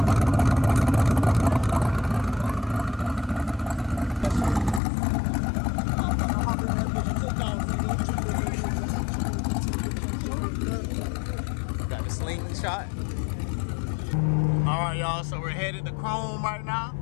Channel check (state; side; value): drops out; right; at 4.8 s